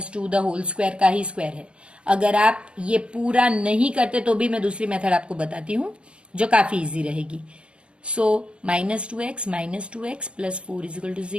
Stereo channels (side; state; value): left; late; 0.057 ms